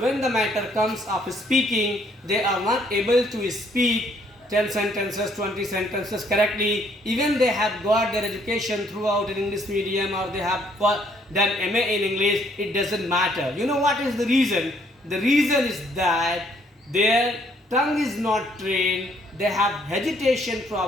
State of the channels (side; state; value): both; normal; correlation 0.66